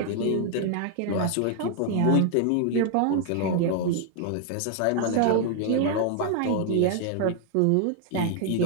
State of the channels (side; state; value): both; different; correlation 0.00